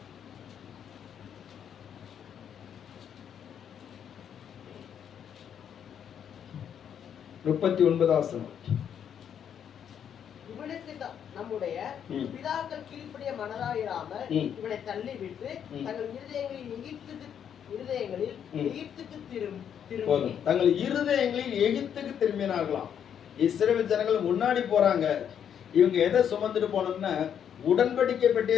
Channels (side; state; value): right; quieter; 8.6 dB